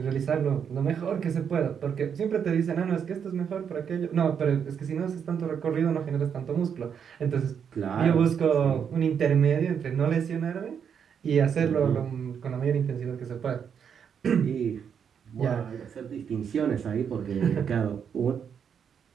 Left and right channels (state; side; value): quieter; left; 7.5 dB